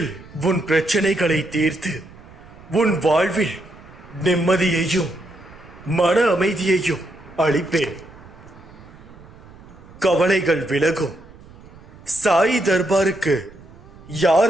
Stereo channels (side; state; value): right; noise; rumble, 21 dB below the sound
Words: உன் பிரச்சனைகளை தீர்த்து உன் வாழ்வில் நிம்மதியையும் மன அமைதியையும் அளிப்பேன். கவலைகள் விலகும். சாய் தர்பாருக்கு